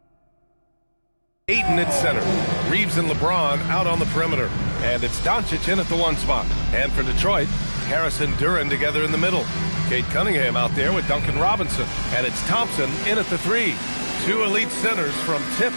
Ayton at center. Reeves and LeBron out on the perimeter. And it's Doncic in at the 1 spot. And for Detroit, Harris and Duren together in the middle. Kate Cunningham out there with Duncan Robinson. And it's Thompson in at the 3. 2 elite centers from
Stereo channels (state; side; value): inverted; both; correlation -1.00